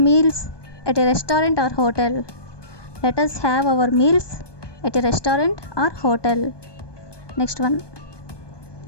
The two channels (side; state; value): right; late; 1.2 ms